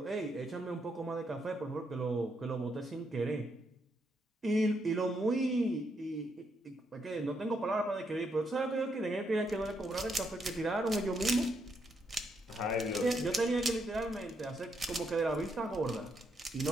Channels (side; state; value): both; normal; correlation 0.78